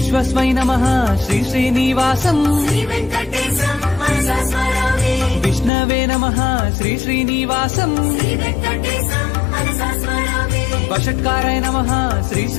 నమః శ్రీ శ్రీనివాసం విష్ణవే నమః శ్రీ శ్రీనివాసం వషట్కారాయ నమః శ్రీ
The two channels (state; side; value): drops out; right; at 5.7 s